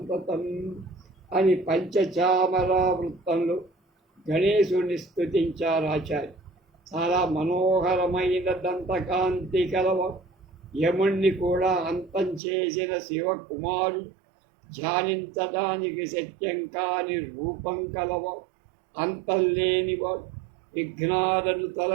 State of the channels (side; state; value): left; drops out; at 12.4 s